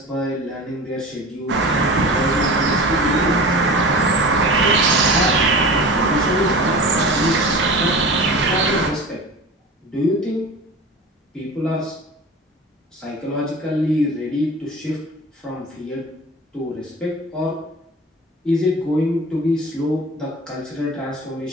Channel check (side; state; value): both; normal; correlation 0.35